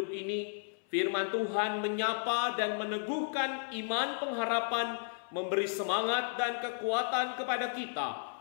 ini, firman Tuhan menyapa dan meneguhkan iman pengharapan, memberi semangat dan kekuatan kepada kita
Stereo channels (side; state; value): right; silent; 55 dB below the other